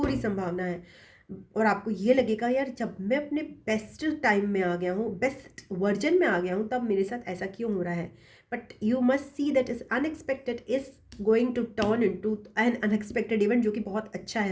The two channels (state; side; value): identical; both; correlation 1.00